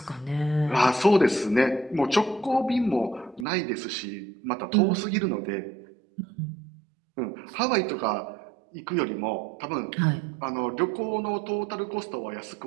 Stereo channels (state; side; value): drops out; left; at 3.5 s